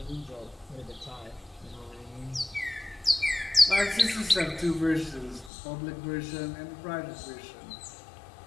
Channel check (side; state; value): right; drops out; at 5.5 s